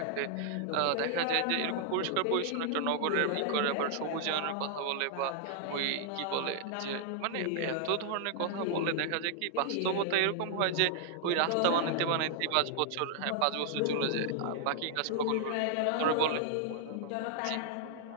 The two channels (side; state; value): both; different; correlation -0.01